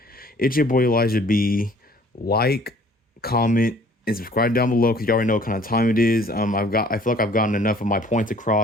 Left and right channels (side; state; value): both; normal; correlation 0.55